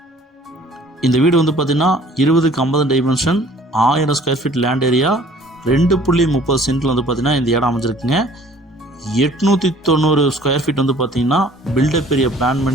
இந்த வீடு வந்து பார்த்திங்கன்னா 20க்கு 50 dimension, 1000 square feet land area, 2.30 சென்ட்டில் வந்து பார்த்திங்கன்னா இந்த இடம் அமைஞ்சிருக்குங்க. 890 ஸ்கொயர் ஃபீட் வந்து பார்த்திங்கன்னா பில்டப் ஏரியா பிளான்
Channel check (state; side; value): normal; both; correlation 0.53